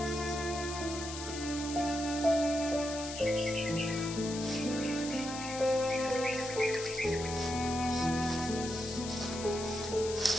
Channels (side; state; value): left; noise; hiss, 9 dB below the sound